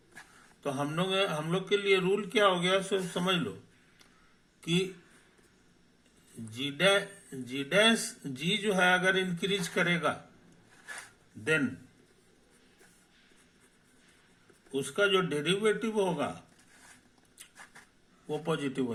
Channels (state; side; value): identical; both; correlation 1.00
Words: तो हम लोग के लिए रूल क्या हो गया, सो समझ लो कि जी जो है अगर इंक्रीज करेगा देन उसका जो डेरिवेटिव होगा वो पॉजिटिव